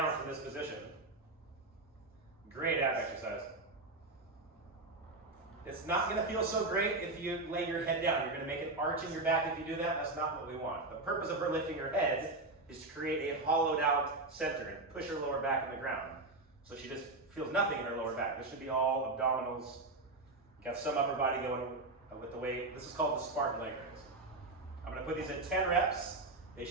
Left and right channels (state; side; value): quieter; left; 3.1 dB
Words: from this position. Great ab exercise. It's not going to feel so great if you lay your head down. You're going to make an arch in your back if you do that. That's not what we want. The purpose of her lifting her head is to create a hollowed out center and push her lower back in the ground. So she just feels nothing in her lower back. This should be all abdominals. Got some upper body going with the weight. This is called the Spartan leg raise. I'm going to put these at 10 reps. They